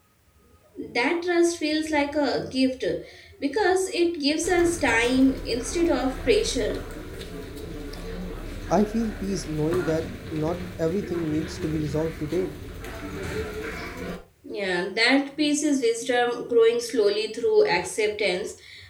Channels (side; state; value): both; identical; correlation 1.00